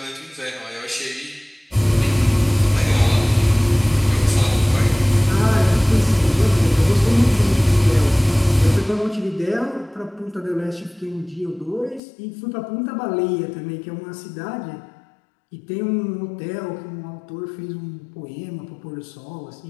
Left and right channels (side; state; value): right; drops out; at 12.0 s